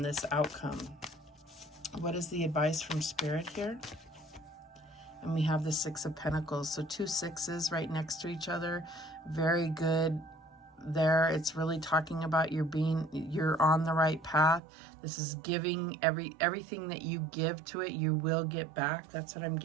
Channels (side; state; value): left; drops out; at 14.6 s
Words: this outcome. What is the advice from Spirit here? And we have the Six of Pentacles. So 2 sixes right next to each other. Very good there. It's really talking about you're on the right path. This is giving everything that you give to it, you will get back. That's what I'm